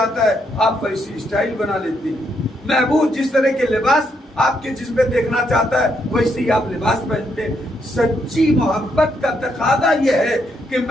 ہے آپ ویسی اسٹائل بنا لیتے ہیں. محبوب جس طرح کے لباس آپ کے جسم پہ دیکھنا چاہتا ہے ویسے ہی آپ لباس پہنتے ہیں. سچی محبت کا تقاضا یہ ہے کہ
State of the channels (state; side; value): normal; both; correlation 0.76